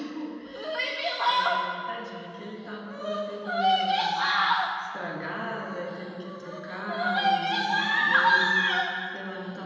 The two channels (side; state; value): both; identical; correlation 1.00